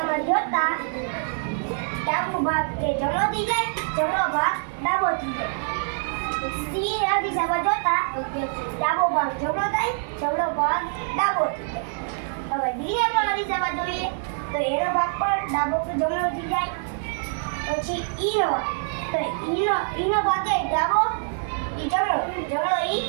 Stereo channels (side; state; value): left; silent; digital silence